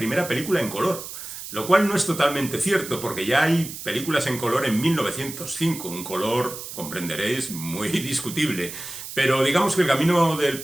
película en color. Lo cual no es totalmente cierto, porque ya hay películas en color en 1905, un color, comprenderéis, muy discutible. Pero digamos que El camino del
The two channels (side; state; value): right; noise; hiss, 10 dB below the sound